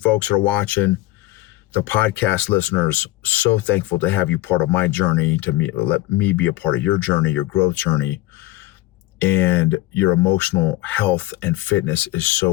that are watching. The podcast listeners, so thankful to have you part of my journey, let me be a part of your journey, your growth journey. And your emotional health and fitness is so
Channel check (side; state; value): right; quieter; 17.4 dB